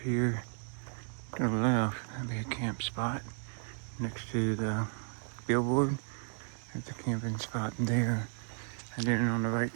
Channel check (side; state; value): left; silent; digital silence